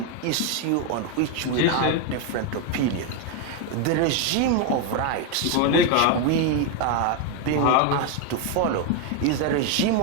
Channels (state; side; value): different; both; correlation 0.02